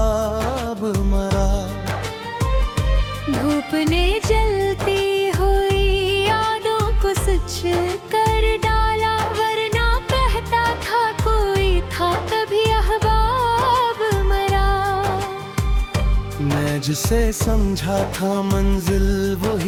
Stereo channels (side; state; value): both; identical; correlation 1.00